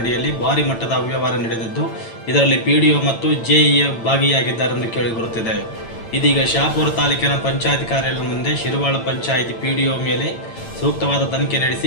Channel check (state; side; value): late; right; 8.9 ms